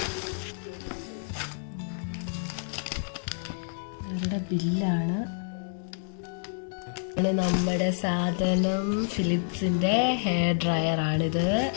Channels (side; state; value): right; silent; digital silence